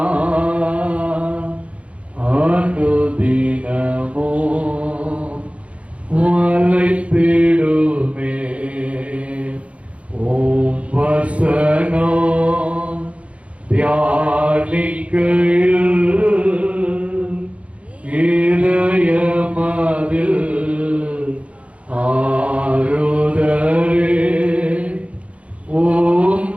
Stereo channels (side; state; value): left; late; 0.063 ms